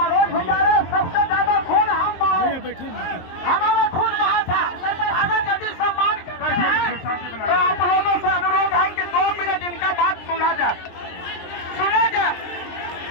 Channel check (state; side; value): late; right; 23 ms